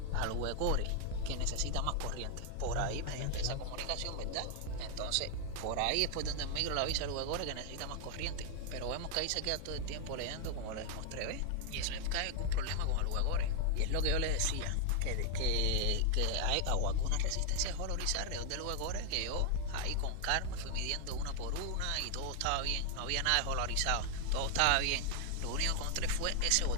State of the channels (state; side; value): different; both; correlation 0.00